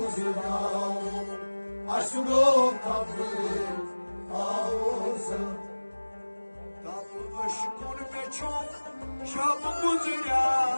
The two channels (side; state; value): both; inverted; correlation -1.00